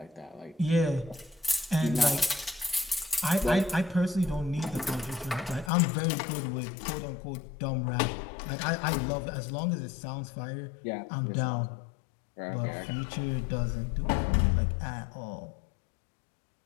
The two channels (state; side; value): drops out; right; at 5.7 s